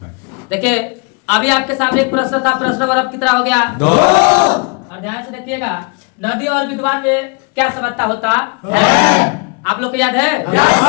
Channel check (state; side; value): quieter; right; 32.9 dB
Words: देखिए, अभी आपके सामने एक प्रश्न था। प्रश्न नंबर अब कितना हो गया? 2। और ध्यान से देखिएगा, नदी और विद्वान में क्या समानता होता है? आप लोग को याद है?